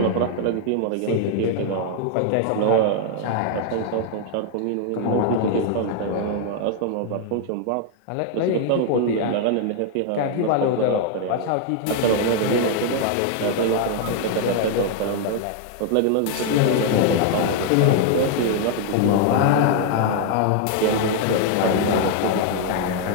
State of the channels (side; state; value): both; different; correlation 0.00